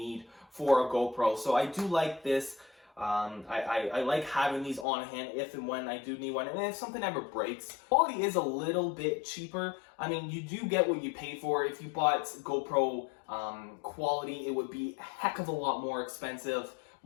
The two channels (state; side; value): drops out; right; at 4.9 s